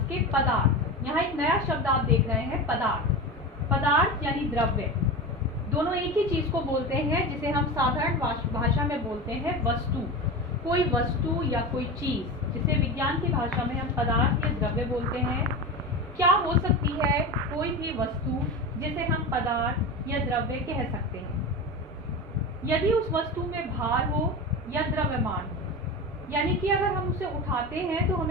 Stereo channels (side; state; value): both; normal; correlation 0.25